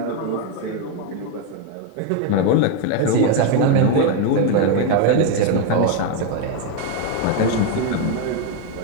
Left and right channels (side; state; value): both; different; correlation 0.02